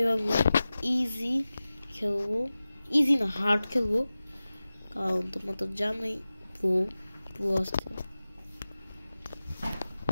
ইজি খেলবো, ইজি না হার্ড খেলবো, কারণ তোমরা তো জানোই প্রো আসতে।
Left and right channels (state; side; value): inverted; both; correlation -0.96